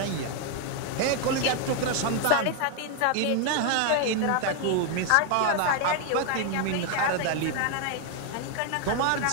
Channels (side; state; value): both; different; correlation 0.00